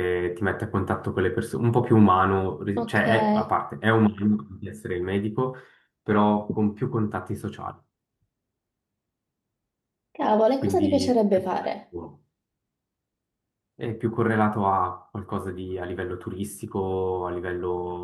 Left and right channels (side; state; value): both; identical; correlation 1.00